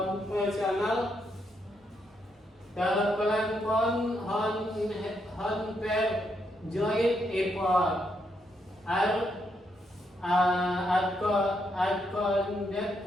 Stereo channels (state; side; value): normal; both; correlation 0.78